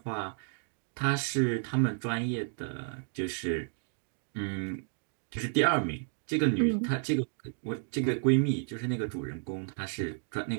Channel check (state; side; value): silent; left; 56 dB below the other